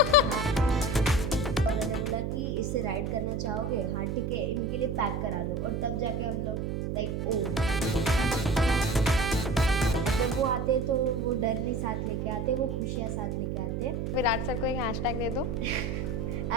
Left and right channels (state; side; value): noise; right; hum, 2 dB below the sound